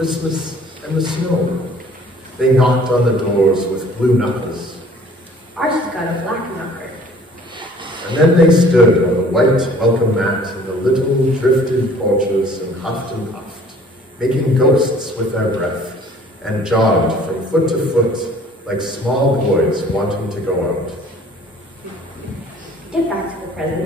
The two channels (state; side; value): normal; both; correlation 0.53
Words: and the snow. They knocked on the doors with blue knuckles. Ours has got a black knocker. And then they stood on the white welcome mat in the little drifted porches and puffed, making ghosts with their breath, and jogged from foot to foot like small boys wanting to go out. Get back to the